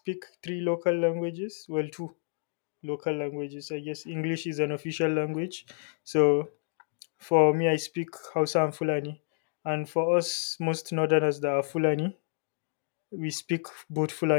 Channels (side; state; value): right; silent; digital silence